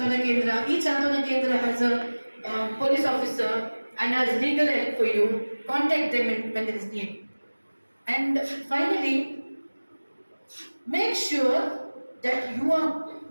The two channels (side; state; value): both; inverted; correlation -1.00